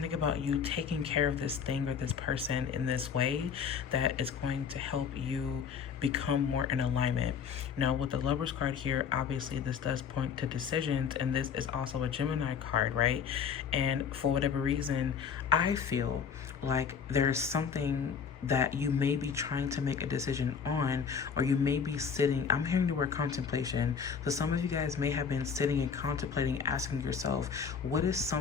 about you taking care of this thing or this person in this way that is going to help you become more in alignment. Now, with the Lover's card here, obviously this does point to decisions, and this is also a Gemini card, right? And for whatever reason, I feel like there's something that you may be trying to make a decision on, or you may be sitting, I'm hearing the word contemplation. So some of you guys may have been sitting and contemplating, asking yourself, what is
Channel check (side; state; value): right; quieter; 6.7 dB